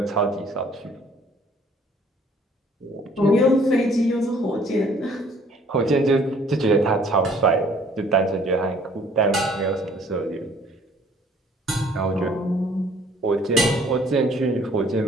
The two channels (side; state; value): both; normal; correlation 0.58